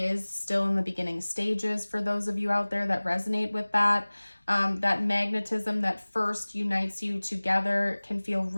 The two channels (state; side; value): inverted; both; correlation -1.00